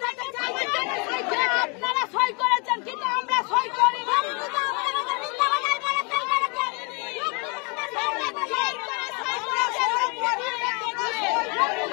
আপনারা সই করেছেন কিন্তু আমরা সই করি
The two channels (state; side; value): quieter; right; 32.5 dB